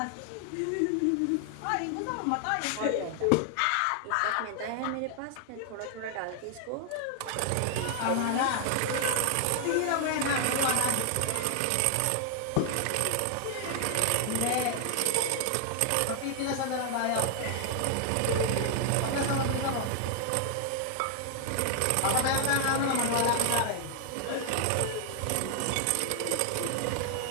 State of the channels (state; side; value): different; both; correlation 0.00